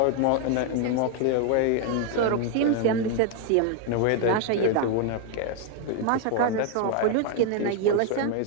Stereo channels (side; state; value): both; different; correlation 0.00